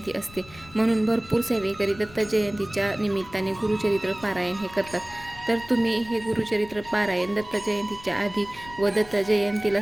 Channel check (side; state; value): left; noise; rumble, 19 dB below the sound